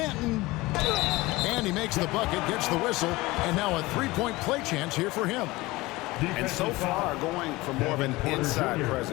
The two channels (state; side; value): quieter; right; 20.7 dB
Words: And he makes the bucket, gets the whistle. And now a 3-point play chance here for him. And so far, going for more of an inside